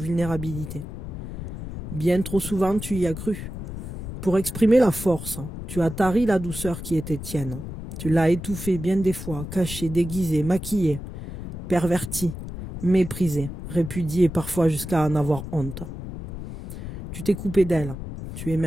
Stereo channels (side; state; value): left; noise; rumble, 9 dB below the sound